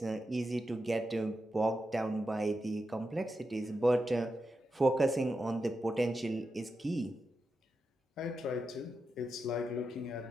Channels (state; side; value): normal; both; correlation 0.88